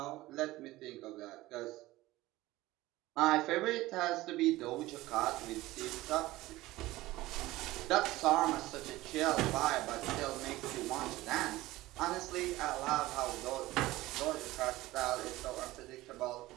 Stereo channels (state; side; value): quieter; left; 17.9 dB